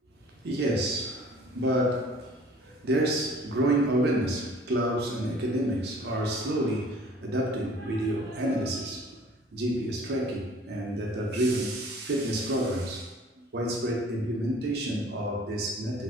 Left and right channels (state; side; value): normal; both; correlation 0.51